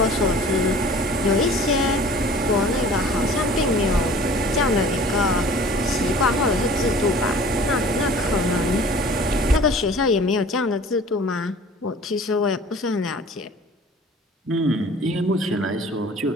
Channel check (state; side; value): normal; both; correlation 0.47